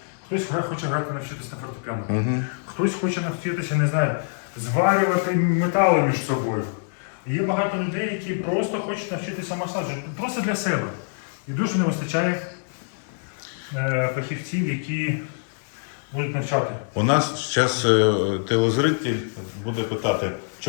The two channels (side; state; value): right; silent; digital silence